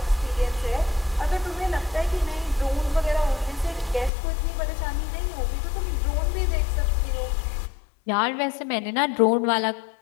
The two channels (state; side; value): drops out; right; at 4.1 s